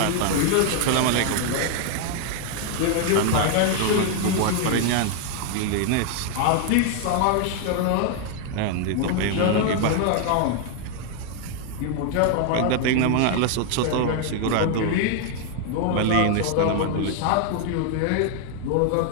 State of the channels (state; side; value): different; both; correlation 0.00